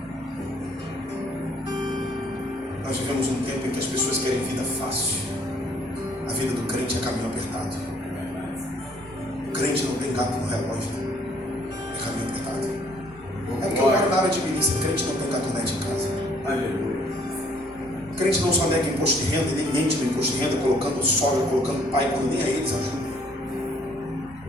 Nós vivemos um tempo em que as pessoas querem vida fácil. A vida do crente é caminho apertado. O crente não tem gato no relógio, é caminho apertado. É porque eu moro na área de milícia, crente não tem gatonete em casa. Aleluia. Crente não só nega imposto de renda, nem mente no imposto de renda, colocando sogra, colocando pai, quando nem a eles ajuda.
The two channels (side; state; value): left; noise; rumble, 29 dB below the sound